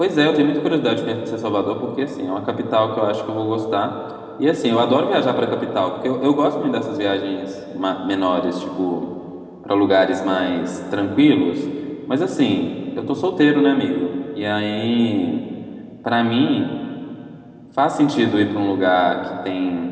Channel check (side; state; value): both; identical; correlation 1.00